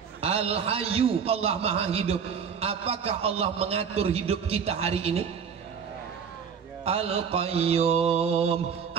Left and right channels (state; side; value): quieter; left; 6.9 dB